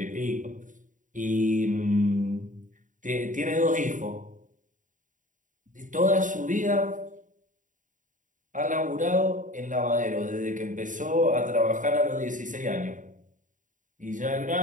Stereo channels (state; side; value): late; left; 0.37 ms